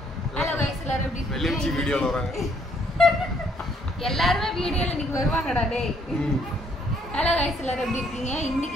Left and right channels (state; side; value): normal; both; correlation 0.67